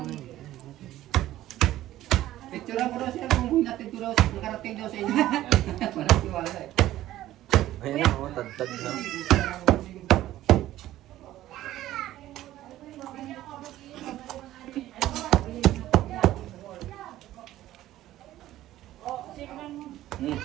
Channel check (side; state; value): left; quieter; 14.3 dB